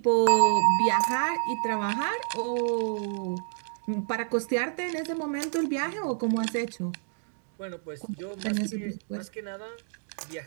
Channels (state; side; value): silent; left; digital silence